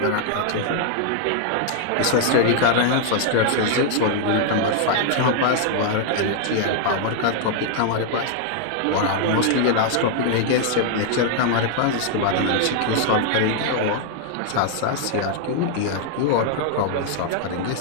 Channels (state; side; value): different; both; correlation 0.00